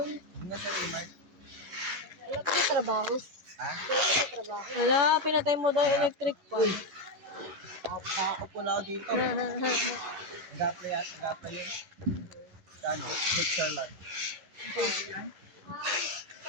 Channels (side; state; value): left; late; 11 ms